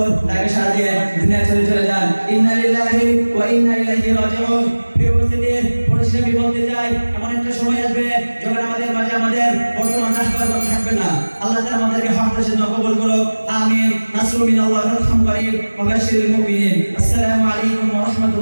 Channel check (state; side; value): inverted; both; correlation -1.00